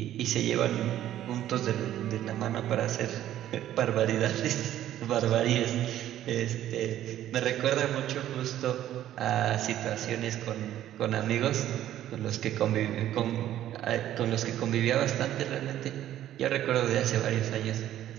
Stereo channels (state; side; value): quieter; left; 12.3 dB